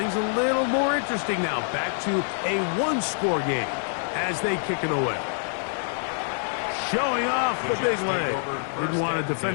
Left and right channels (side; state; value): right; silent; digital silence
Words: a little more interesting now. Back to a one-score game as they kick it away. Showing off the big leg. Didn't want to